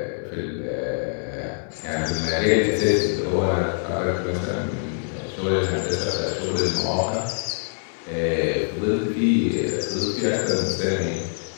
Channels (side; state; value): right; silent; 62 dB below the other